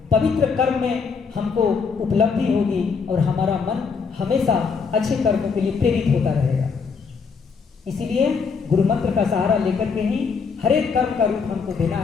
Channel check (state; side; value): quieter; right; 5.5 dB